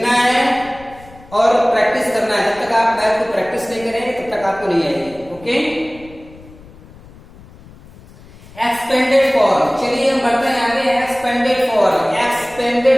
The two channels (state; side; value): noise; left; rumble, 22 dB below the sound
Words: है और प्रैक्टिस करना है, जब तक आप मैथ को प्रैक्टिस नहीं करेंगे तब तक आपको नहीं आएगी। ओके, एक्सपेंडेड फॉर्म, चलिए हम बढ़ते हैं आगे। Expanded form,